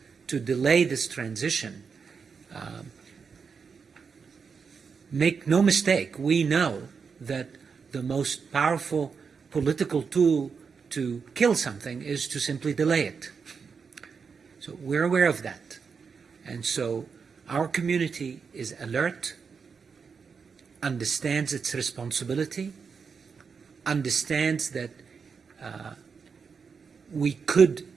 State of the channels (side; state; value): left; quieter; 5.7 dB